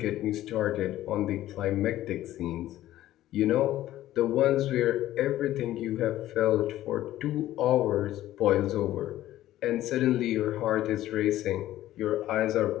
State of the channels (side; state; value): right; quieter; 14.1 dB